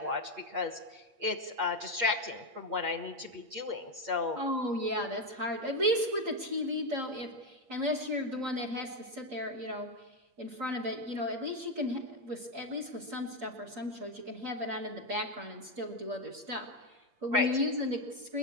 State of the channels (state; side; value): late; left; 8.5 ms